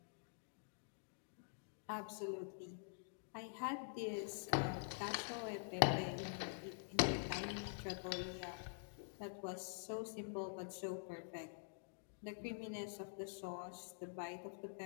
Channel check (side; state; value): right; silent; digital silence